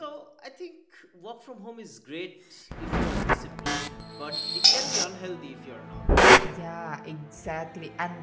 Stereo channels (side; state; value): both; identical; correlation 1.00